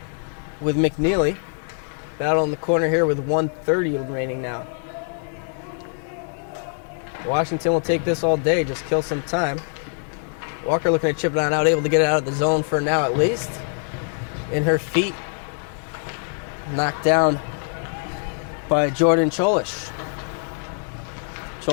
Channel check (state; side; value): silent; right; 59 dB below the other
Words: with McNeely. Battle in the corner here with 1:30 remaining now. Washington will take this all day, just kill some time. Walker looking to chip it on out, able to get it out of the zone for now at least. In her feet. Knocked down by Jordan Cholish.